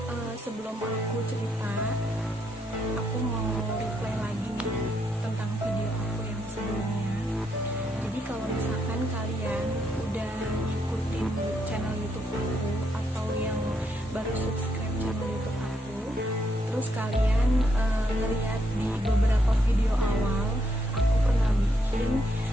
Sebelum aku cerita, aku mau reply lagi nih tentang video aku yang sebelumnya. Jadi kalau misalkan kalian udah ngikutin channel YouTube aku atau yang baru subscribe channel YouTube aku, terus kalian ngeliat di beberapa video awal, aku pernah bikin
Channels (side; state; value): both; normal; correlation 0.77